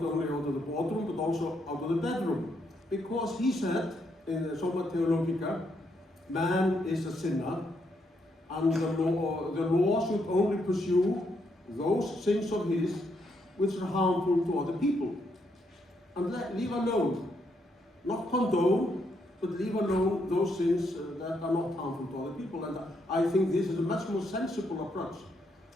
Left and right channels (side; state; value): both; normal; correlation 0.77